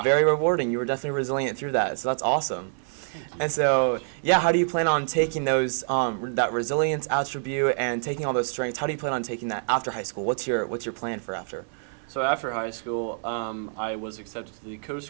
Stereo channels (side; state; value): left; silent; 61 dB below the other